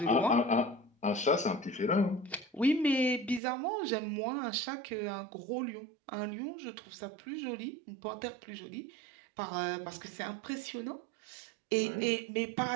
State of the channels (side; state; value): left; drops out; at 3.4 s